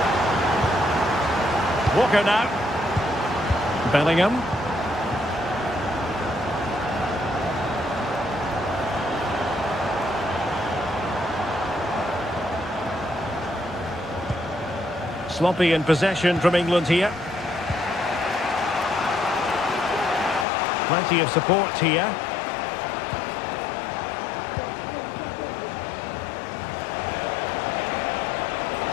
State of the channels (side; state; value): right; drops out; at 20.5 s